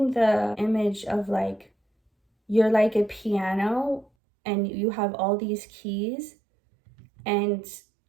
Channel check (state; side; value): drops out; left; at 4.0 s